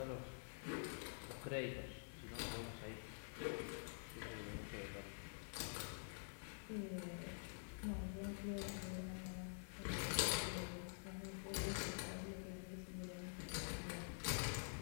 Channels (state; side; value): silent; right; digital silence